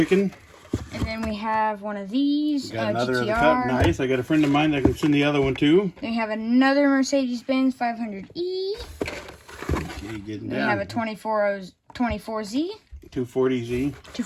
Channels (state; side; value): identical; both; correlation 1.00